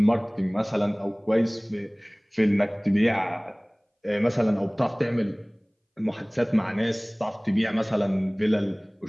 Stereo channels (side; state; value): both; identical; correlation 1.00